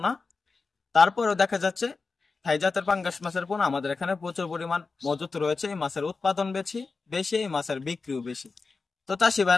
তারপরেও দেখা যাচ্ছে থাই জাতের পাঙ্গাস মাছের পোনা আমাদের এখানে প্রচুর পরিমাণ মজুত রয়েছে। এই মাছের উৎপাদন বেশি, এই মাছের বিক্রিও বেশি। তো চাষি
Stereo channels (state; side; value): quieter; right; 4.3 dB